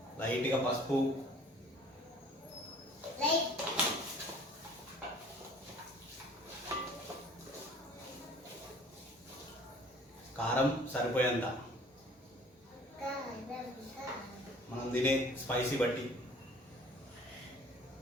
లైట్గా పసుపు, కారం సరిపోయేంత, మనం తినే స్పైసీ బట్టి.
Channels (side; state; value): both; normal; correlation 0.51